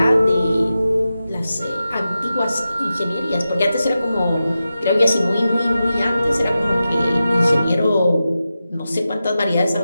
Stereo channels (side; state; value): both; inverted; correlation -0.92